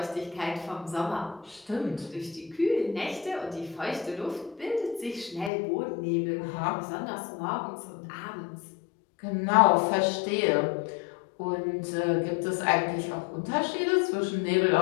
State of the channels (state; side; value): drops out; right; at 5.5 s